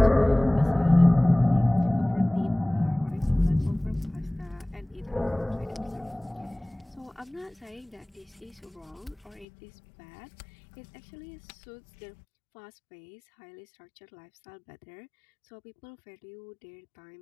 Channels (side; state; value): right; drops out; at 9.5 s